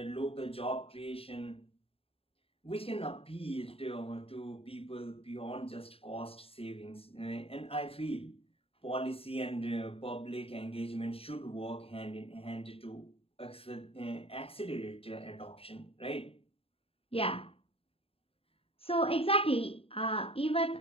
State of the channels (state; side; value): late; right; 0.27 ms